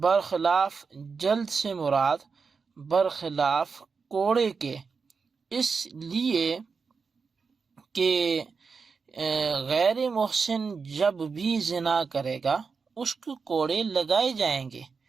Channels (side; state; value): left; quieter; 5.2 dB